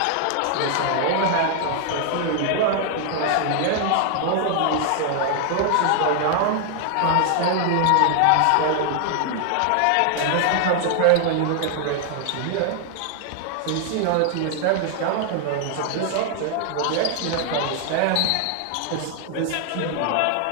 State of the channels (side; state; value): both; different; correlation 0.00